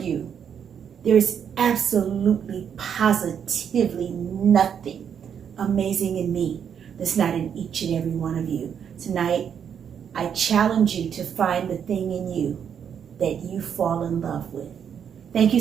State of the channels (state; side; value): quieter; left; 8.0 dB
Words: there is absolutely, positively nothing amazing in me that's not in each and every one of you. Tonight, I challenge you to find the thing in you that you fall in love with. Thank you